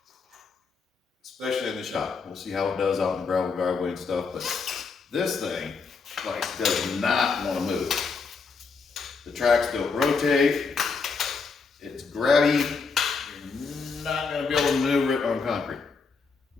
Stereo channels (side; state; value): right; quieter; 4.9 dB